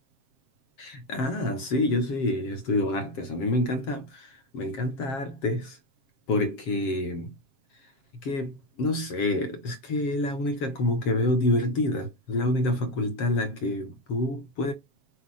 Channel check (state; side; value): late; right; 7.4 ms